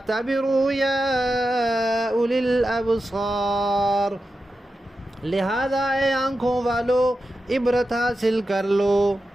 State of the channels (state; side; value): normal; both; correlation 0.91